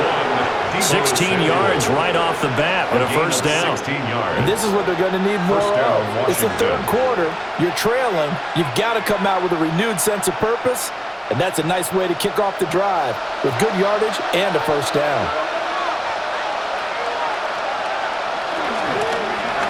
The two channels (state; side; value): identical; both; correlation 1.00